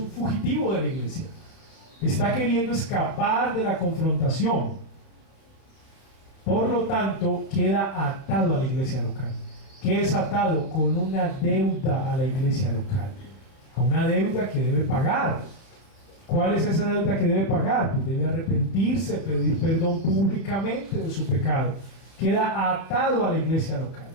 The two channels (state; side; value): late; right; 31 ms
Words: fugitivo de la iglesia. Está queriendo escapar de la confrontación. Por lo tanto, queda atado a la iglesia local. ¿Qué es atado? Con una deuda a la iglesia local. A una deuda que debe pagar. ¿Cuál es esa deuda que debe pagar? Pues debe arrepentirse, pedir perdón públicamente de su pecado. Queda atado a la iglesia local.